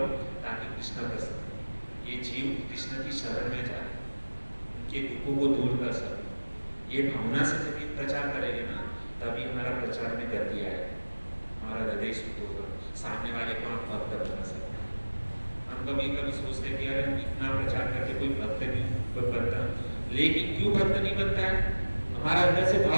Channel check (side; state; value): both; inverted; correlation -1.00